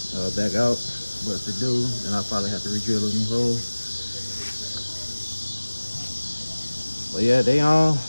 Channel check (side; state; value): both; inverted; correlation -1.00